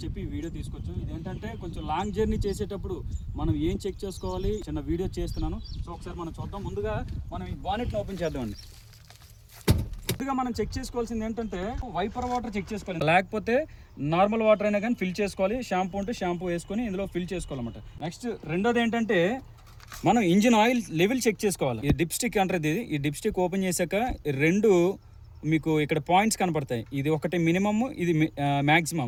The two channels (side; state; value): both; identical; correlation 1.00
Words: చెప్పి ఈ వీడియో తీసుకొచ్చాం. ఇదేంటంటే కొంచెం లాంగ్ జర్నీ చేసేటప్పుడు మనం ఏం చెక్ చేసుకోవాలి చిన్న వీడియో చేస్తున్నాను. సో ఒకసారి మనం చూద్దాం. ముందుగా మనం ఈ బానెట్ని ఓపెన్ చేద్దామండి. ముందుగా మనం చెక్ చేసుకోవాల్సింది ఏంటంటే, వైపర్ వాటర్ చెక్ చేసుకోవాలి, లేకపోతే నార్మల్ వాటర్ అయినా కానీ ఫిల్ చేసుకోవాలి. షాంపూ ఉంటే షాంపూ వేసుకొని ఇందులో ఫిల్ చేసుకోవాలన్నమాట. నెక్స్ట్ రెండోది ఏంటంటే, మనం ఇంజిన్ ఆయిల్ లెవెల్ చెక్ చేసుకోవాలి. ఈ డిప్ స్టిక్ అంటారు. ఈ డిప్ స్టిక్ ఓపెన్ చేశాక రెండు మీకు ఇక్కడ పాయింట్స్ కనపడతాయి. ఇది ఒకటి మినిమమ్, ఇది